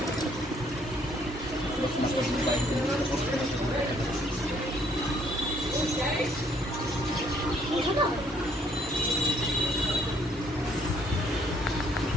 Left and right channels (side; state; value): both; normal; correlation 0.65